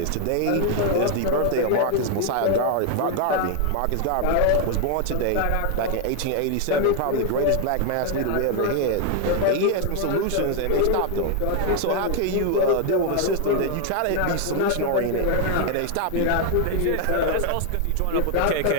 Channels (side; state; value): both; different; correlation 0.00